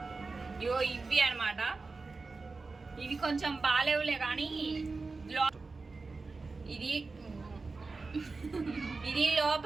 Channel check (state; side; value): quieter; left; 4.0 dB